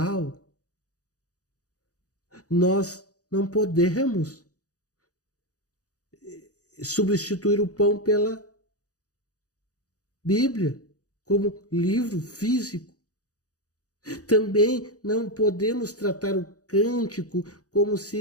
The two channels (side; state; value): right; late; 0.67 ms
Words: nós não podemos substituir o pão pela Bíblia como livro físico. Também não podemos tratar o cântico como